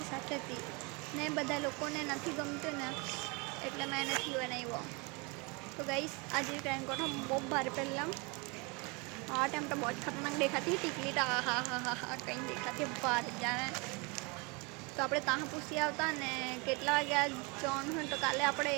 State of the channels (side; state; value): left; quieter; 29.4 dB